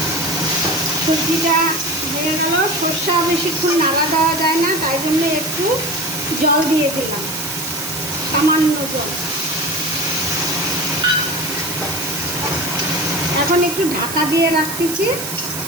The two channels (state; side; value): noise; right; hiss, 6 dB below the sound